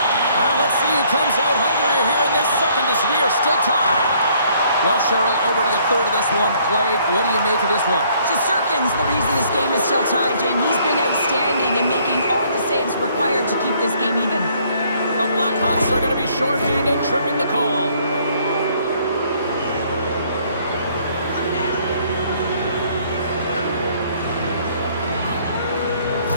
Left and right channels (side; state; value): both; inverted; correlation -0.63